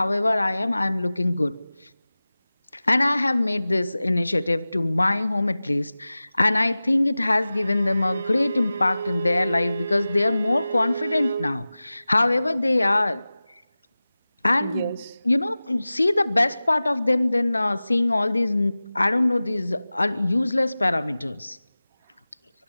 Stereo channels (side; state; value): both; inverted; correlation -0.97